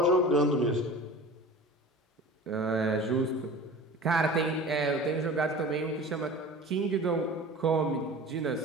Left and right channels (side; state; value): both; normal; correlation 0.38